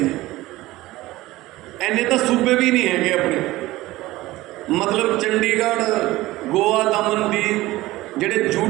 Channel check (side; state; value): left; quieter; 18.0 dB